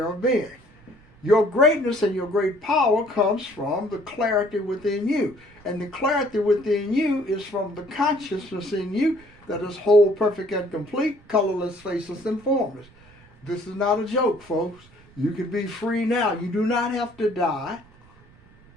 of being. Your greatness and your great power comes from the clarity within you. And the clarity within you is from the consciousness in you that is whole, perfect, and complete, colorless, faceless, and formless. This is not a joke, folks. You can be free now. You do not have to die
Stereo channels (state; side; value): noise; right; rumble, 27 dB below the sound